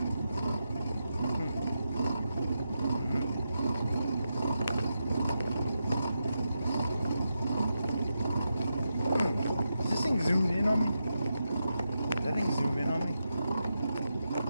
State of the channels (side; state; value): both; inverted; correlation -0.87